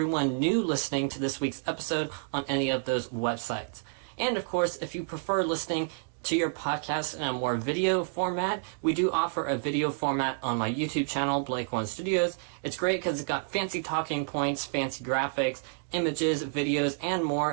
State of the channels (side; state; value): left; silent; digital silence